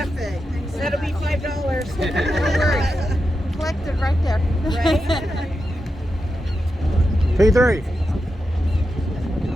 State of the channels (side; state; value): both; normal; correlation 0.88